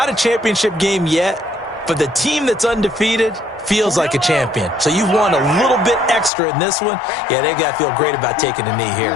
a championship game yet, but the team that's undefeated feels like a champion. So you've won a little bit extra in this one. Yeah, they got to feel great about taking a knee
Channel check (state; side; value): drops out; right; at 6.3 s